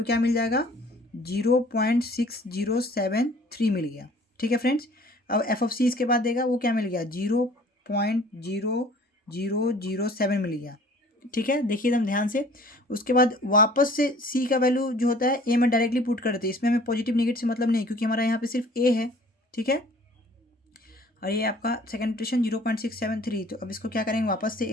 क्या मिल जाएगा 0.6073 मिल गया, ठीक है फ्रेंड्स। अब एफ ऑफ सी इसके बाद देगा, वो क्या मिल गया 0.0007 मिल गया, ठीक है, देखिए एकदम ध्यान से। उसके बाद वापस से सी का वैल्यू जो होता है ए में डायरेक्टली पुट करते हैं, इसमें हमें पॉजिटिव नेगेटिव से मतलब नहीं, क्योंकि हमारा यहाँ पे सिर्फ ए है, ठीक है। और ये आपका सेकेंड इटरेशन 0.673, तो अब इसको क्या करेंगे, वापस से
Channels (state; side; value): normal; both; correlation 0.51